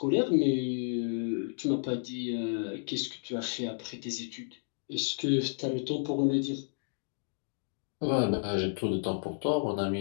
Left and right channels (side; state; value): right; silent; digital silence